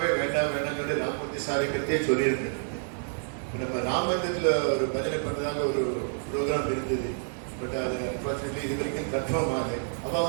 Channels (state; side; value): silent; left; digital silence